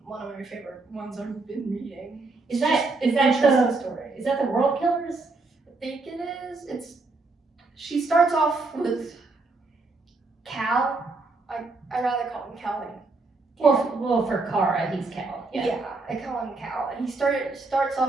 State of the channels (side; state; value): left; quieter; 3.6 dB